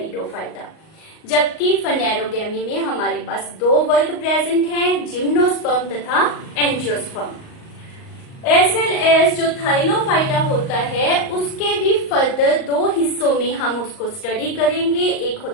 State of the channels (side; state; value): right; late; 38 ms